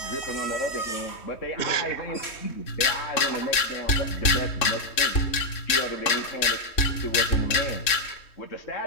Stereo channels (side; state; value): right; late; 3.5 ms